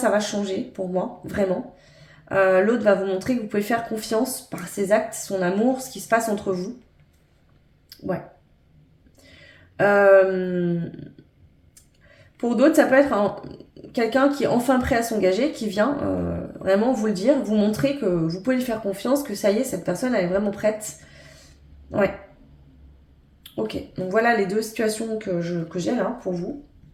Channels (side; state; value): both; identical; correlation 1.00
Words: changer pour moi, vraiment. L'autre va vous montrer que vous pouvez faire confiance par ses actes, son amour, ce qui se passe entre vous. Ouais. Pour d'autres, ça peut être quelqu'un qui est enfin prêt à s'engager, qui vient vraiment vous le dire, vous montrer que vous pouvez lui faire confiance, que ça y est, cette personne elle est vraiment prête. Ouais. Ok, donc voilà les 2 situations que j'ai là pour vous.